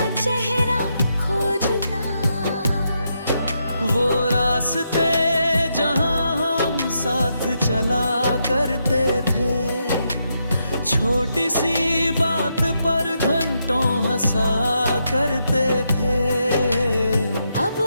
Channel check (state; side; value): inverted; both; correlation -0.82